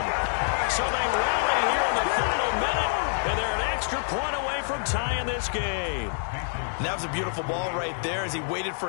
So they rally here in the final minute, and they're an extra point away from tying this game. And that was a beautiful ball right there as he waited for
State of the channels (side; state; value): right; silent; digital silence